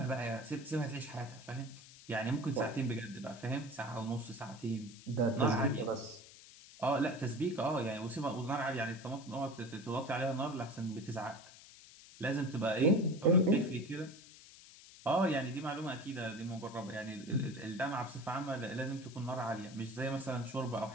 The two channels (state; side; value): noise; left; hiss, 19 dB below the sound